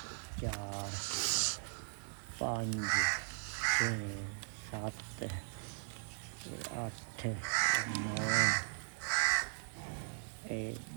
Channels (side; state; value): left; silent; digital silence